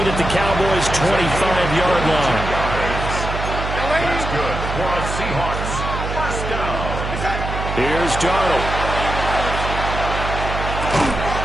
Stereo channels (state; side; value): noise; right; hum, 4 dB below the sound